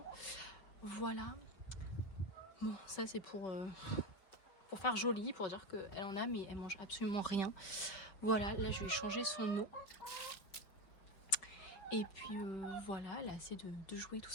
Voilà. Bon, ça c'est pour faire joli, pour dire qu'elle en a, mais elle mange absolument rien. Voilà, là je vais changer son eau. Et puis voilà, elle a assez de jouer, tout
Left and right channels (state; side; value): late; right; 5.1 ms